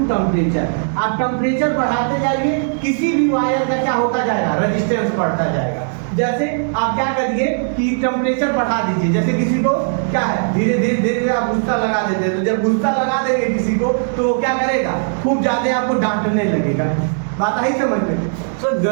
temperature. आप टेम्परेचर बढ़ाते जाइए, किसी भी वायर का क्या होता जाएगा, रेजिस्टेंस बढ़ता जाएगा। जैसे आप क्या करिए कि टेम्परेचर बढ़ा दीजिए, जैसे किसी को क्या है, धीरे धीरे धीरे आप गुस्सा लगा देते हैं, तो जब गुस्सा लगा देंगे किसी को तो वो क्या करेगा, खूब ज्यादा आपको डांटने लगेगा। बात आई समझ में। सर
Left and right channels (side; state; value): left; silent; 67 dB below the other